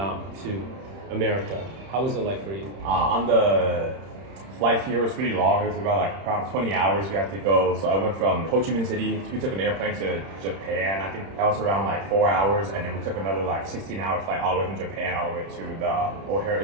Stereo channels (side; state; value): left; late; 31 ms